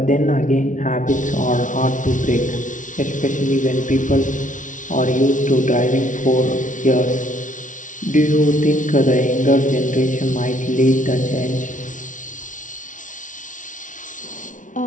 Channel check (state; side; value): late; right; 0.37 ms